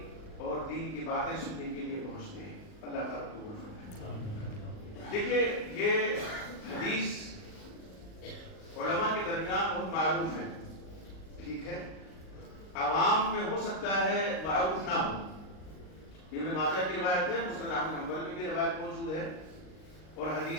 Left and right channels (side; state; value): right; late; 38 ms